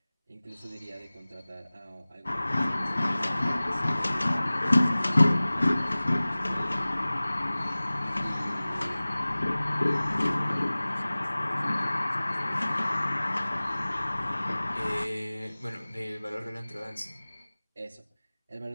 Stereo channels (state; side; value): inverted; both; correlation -0.99